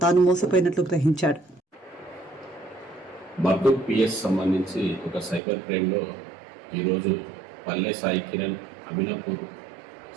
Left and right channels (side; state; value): left; drops out; at 5.4 s